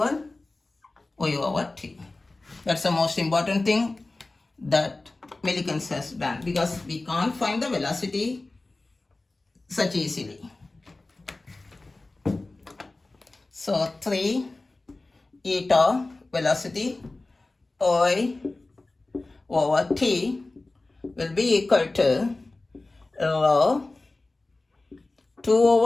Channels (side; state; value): right; quieter; 3.1 dB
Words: y over t. That's the most important thing that Millikan has done, because we can't find the velocity such easily. So 3 eta velocity y over t will be equal to rho 2